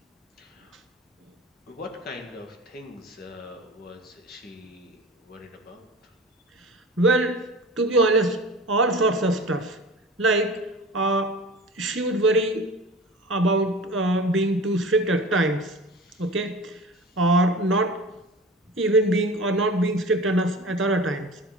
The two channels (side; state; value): both; normal; correlation 0.37